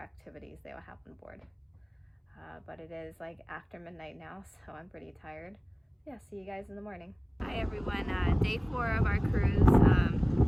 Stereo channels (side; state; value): both; identical; correlation 1.00